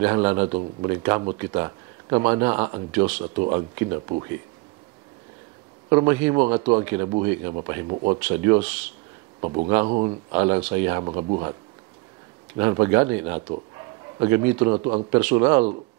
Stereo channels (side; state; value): left; quieter; 24.4 dB